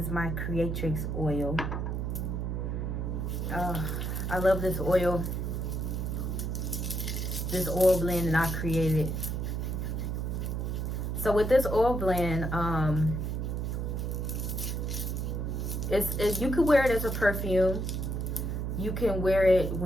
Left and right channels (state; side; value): noise; right; hum, 2 dB below the sound